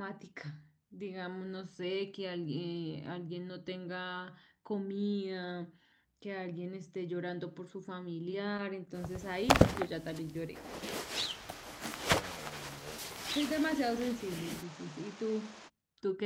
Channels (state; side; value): identical; both; correlation 1.00